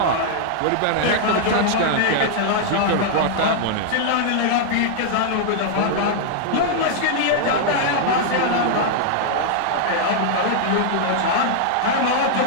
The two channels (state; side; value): different; both; correlation -0.01